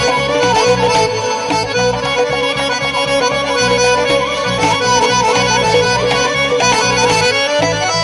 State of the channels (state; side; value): identical; both; correlation 1.00